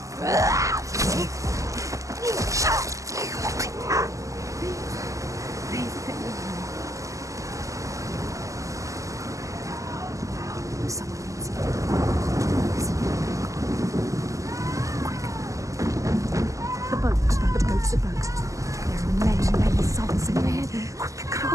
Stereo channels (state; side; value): late; left; 0.16 ms